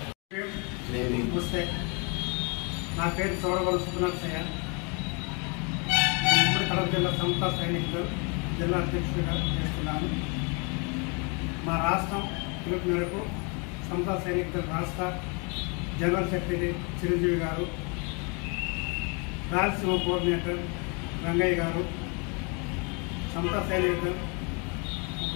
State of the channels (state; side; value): quieter; right; 33.4 dB